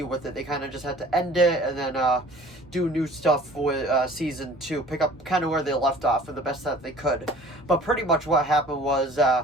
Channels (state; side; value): normal; both; correlation 0.48